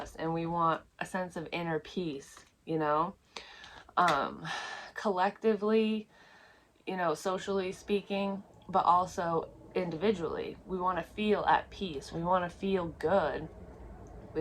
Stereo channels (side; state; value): both; identical; correlation 1.00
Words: And we want a sense of inner peace, you know? Um, collectively, socially speaking, but also individually. We want to feel at peace. We want to feel good.